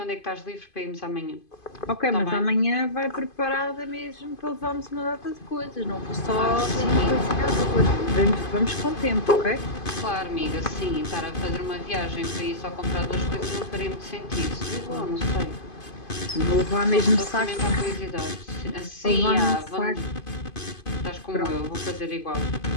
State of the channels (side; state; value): right; late; 2.5 ms